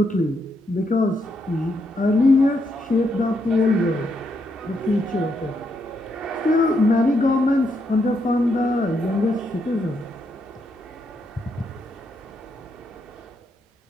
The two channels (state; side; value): normal; both; correlation 0.79